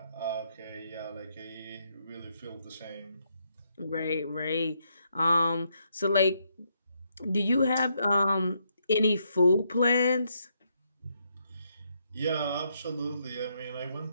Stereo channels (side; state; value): both; inverted; correlation -0.76